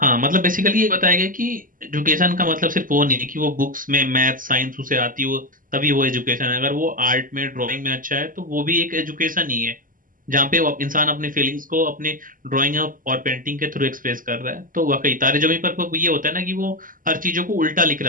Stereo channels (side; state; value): left; late; 0.40 ms